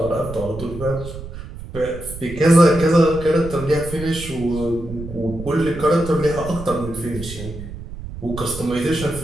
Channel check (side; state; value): right; noise; rumble, 11 dB below the sound